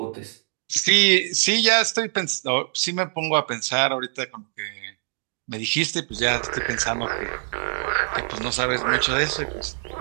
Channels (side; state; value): left; silent; digital silence